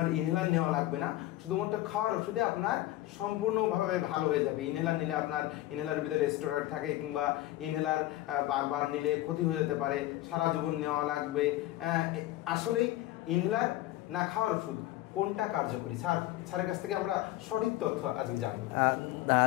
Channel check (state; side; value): quieter; right; 15.9 dB